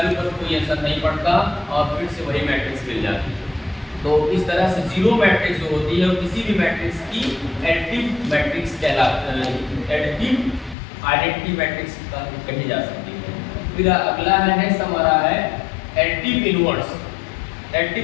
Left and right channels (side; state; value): right; drops out; at 10.8 s